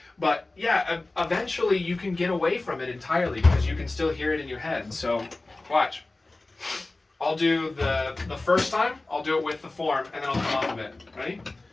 But yeah, eventually you can get away from it entirely because you can still hear it in your head. So watch. I'll do the first time. I'll do it with the form, and then I'll come off of it. Ready? 1,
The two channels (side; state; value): right; quieter; 3.1 dB